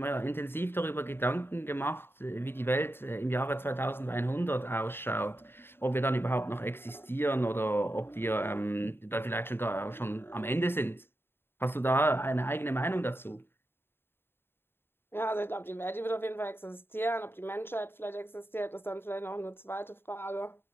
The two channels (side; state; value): right; late; 0.11 ms